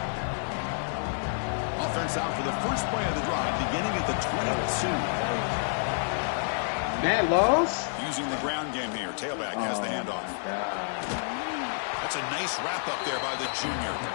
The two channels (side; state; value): right; silent; 59 dB below the other